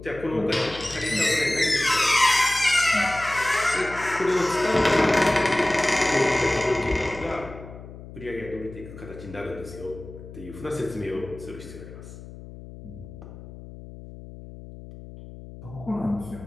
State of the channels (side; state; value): left; noise; hum, 15 dB below the sound